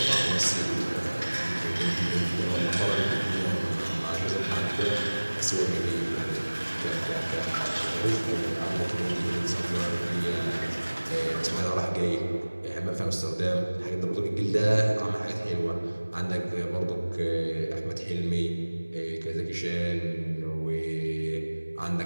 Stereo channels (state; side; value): inverted; both; correlation -1.00